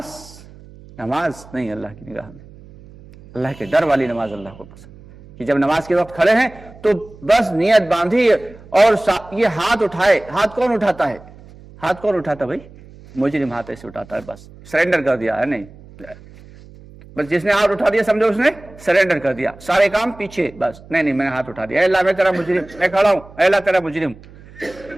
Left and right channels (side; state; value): right; noise; hum, 21 dB below the sound